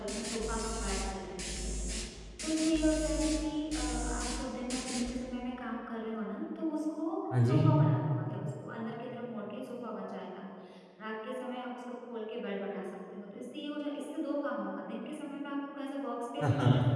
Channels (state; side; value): identical; both; correlation 1.00